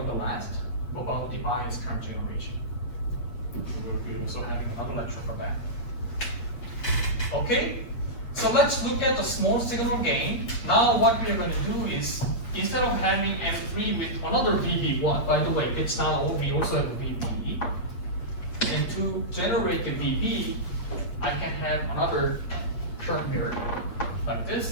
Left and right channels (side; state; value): right; late; 8.3 ms